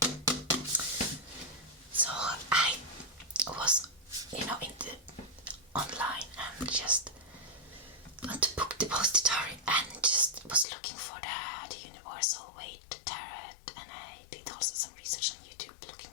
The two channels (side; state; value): right; drops out; at 10.7 s